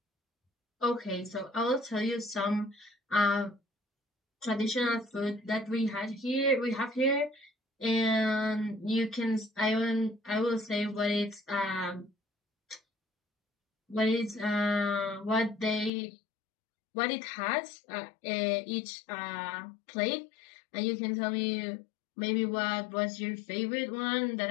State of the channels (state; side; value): drops out; right; at 15.9 s